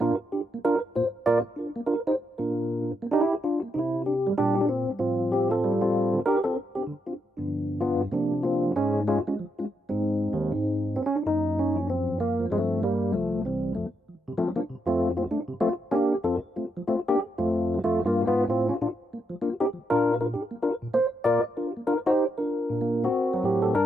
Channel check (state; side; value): normal; both; correlation 0.82